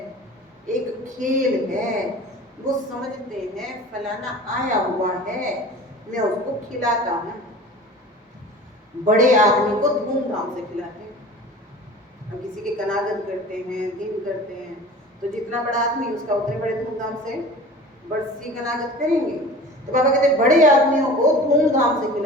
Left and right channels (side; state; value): both; normal; correlation 0.40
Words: एक खेल है। वो समझते हैं फलाना आया हुआ है, मैं उसको खिलाता हूँ। बड़े आदमी को धूमधाम से खिलाते हैं। हम किसी के कनागत करते हैं, दिन करते हैं, तो जितना बड़ा आदमी उसका उतने बड़े धूमधाम से बरसी कनागत करेंगे। तो बाबा कहते हैं बड़े आदमियों को धूमधाम से